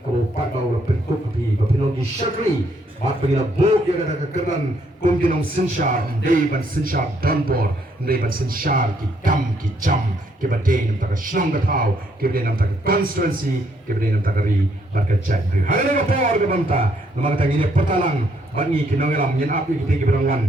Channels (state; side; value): normal; both; correlation 0.71